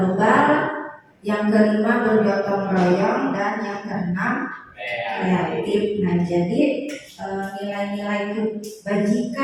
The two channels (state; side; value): identical; both; correlation 1.00